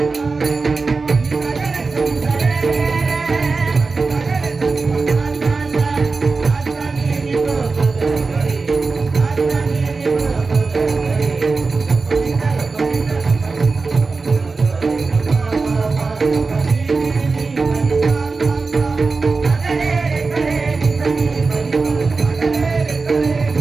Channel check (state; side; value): quieter; left; 4.1 dB